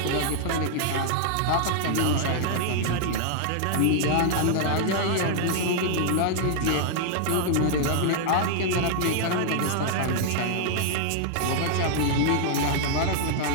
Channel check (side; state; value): both; different; correlation -0.01